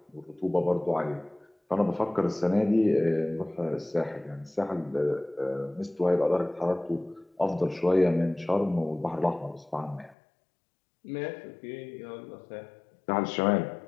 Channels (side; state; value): right; drops out; at 10.2 s